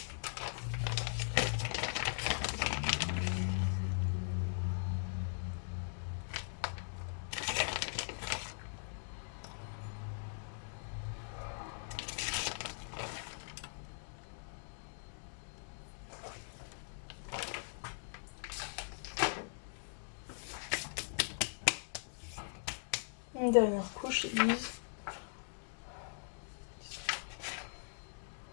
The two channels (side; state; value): right; silent; digital silence